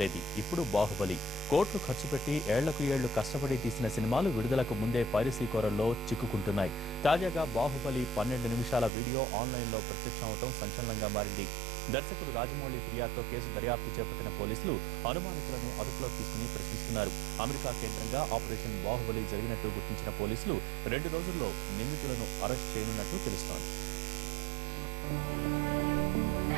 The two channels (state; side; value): drops out; left; at 8.9 s